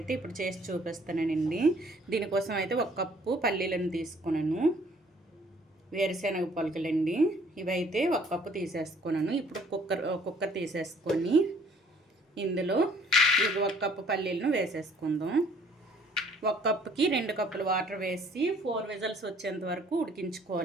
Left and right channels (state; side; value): normal; both; correlation 0.59